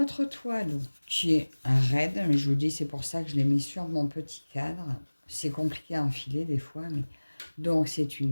toile qui est raide, mais je vous dis, c'est pour ça que je l'ai mis sur mon petit cadre. C'est compliqué à enfiler des fois, mais... Donc, c'est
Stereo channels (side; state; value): both; inverted; correlation -1.00